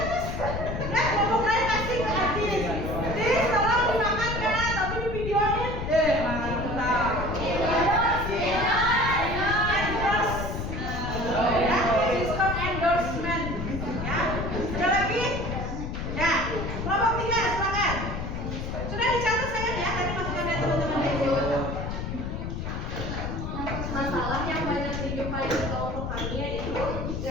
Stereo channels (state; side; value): noise; left; rumble, 4 dB below the sound